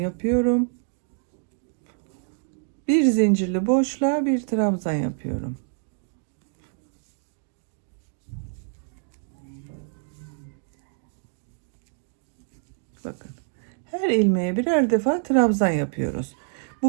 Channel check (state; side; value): silent; left; 61 dB below the other